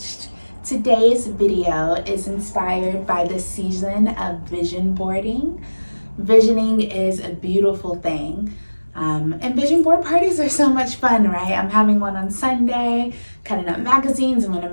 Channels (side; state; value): both; inverted; correlation -1.00